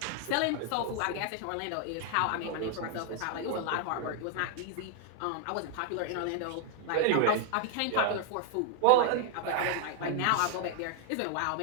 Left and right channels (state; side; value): different; both; correlation 0.00